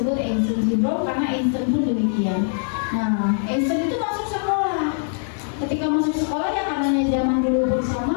Einstein syndrome karena Einstein pun demikian. Nah, Einstein itu masuk sekolah. Ketika masuk sekolah ya karenanya zaman dulu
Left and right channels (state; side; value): silent; right; digital silence